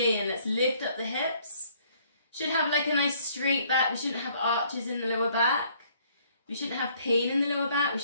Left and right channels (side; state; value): both; inverted; correlation -0.62